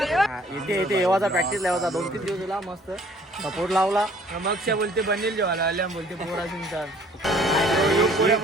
इथे येवाचा प्रॅक्टिस लावायचा. 2-3 दिवस दिला मस्त सपोर्ट लावला. मग बोलते बनेल जेवायला आल्या बोलते पोरा सिंगचा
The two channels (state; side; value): normal; both; correlation 0.56